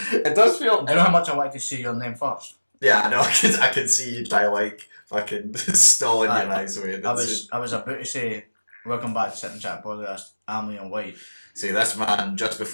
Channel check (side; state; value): both; inverted; correlation -1.00